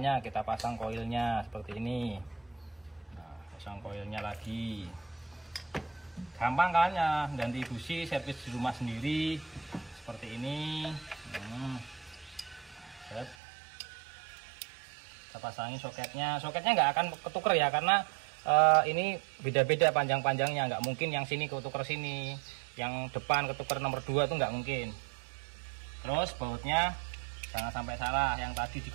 kita pasang koilnya seperti ini. Nah, pasang koilnya lagi gampang kan ya, ganti busi servis di rumah sendiri seperti ini. Set. Kita pasangin soketnya nggak akan ketuker ya, karena ini beda-beda panjang-panjangnya, nggak mungkin yang sini ketuker sini, yang depan ketuker nomor 2 itu nggak mungkin. Terus bautnya jangan sampai salah, yang tadi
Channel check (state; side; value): drops out; left; at 13.4 s